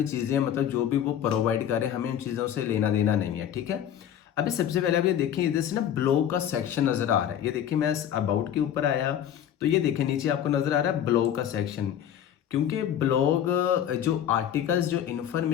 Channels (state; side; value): quieter; right; 10.0 dB